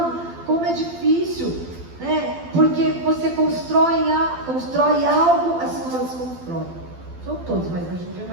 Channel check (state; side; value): late; left; 12 ms